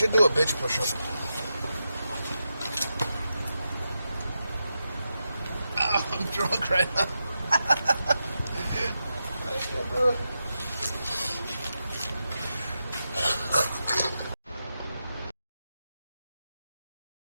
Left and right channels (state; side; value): inverted; both; correlation -0.88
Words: do a bitch push-up. I'm drunk right now. I can't do it.